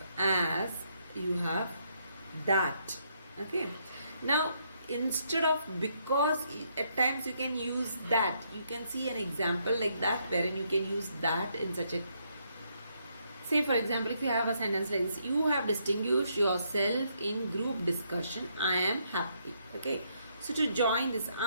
as, you have that. Okay, now instead of because, at times you can use that. You can see an example like that wherein you can use that in such a, say for example, if you have a sentence like this, you have distinguished yourself in group discussion, I am happy. Okay, so to join this,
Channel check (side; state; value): both; inverted; correlation -0.74